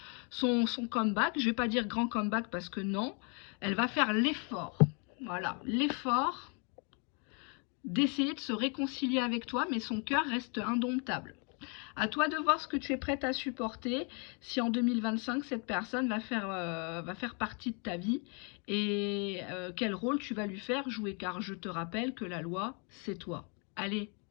comeback. Je ne vais pas dire grand comeback parce que non, elle va faire l'effort. Voilà, l'effort d'essayer de se réconcilier avec toi, mais son cœur reste indomptable. À toi de voir ce que tu es prête à supporter, si en 2025, cette personne va faire partie de ta vie et quel rôle tu vas lui faire jouer, car je te rappelle que la loi, c'est toi. Allez,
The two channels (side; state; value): right; quieter; 36.3 dB